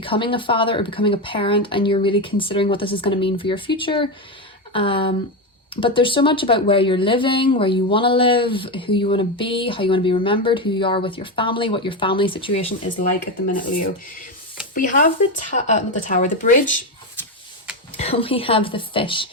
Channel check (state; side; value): normal; both; correlation 0.12